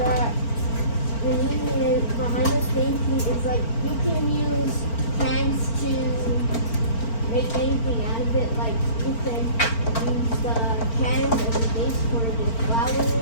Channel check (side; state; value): right; late; 4.4 ms